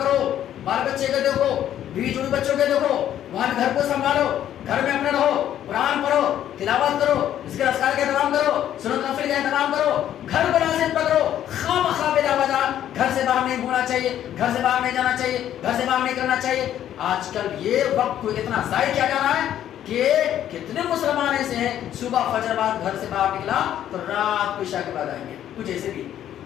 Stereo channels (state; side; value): quieter; right; 11.1 dB